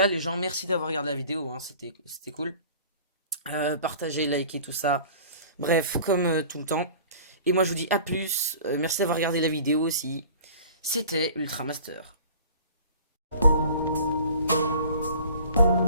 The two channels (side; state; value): both; inverted; correlation -0.46